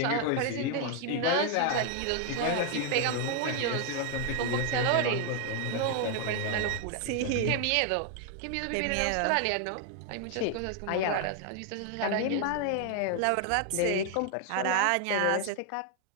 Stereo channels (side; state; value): both; different; correlation 0.00